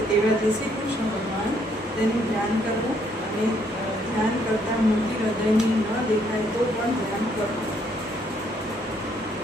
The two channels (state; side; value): normal; both; correlation 0.69